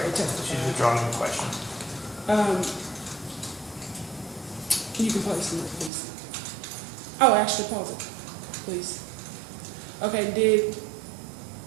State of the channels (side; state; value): left; drops out; at 5.9 s